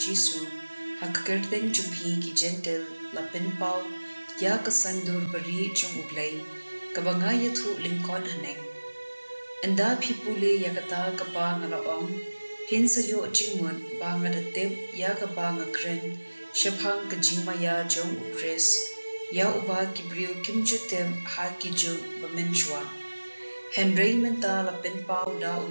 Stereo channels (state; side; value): inverted; both; correlation -1.00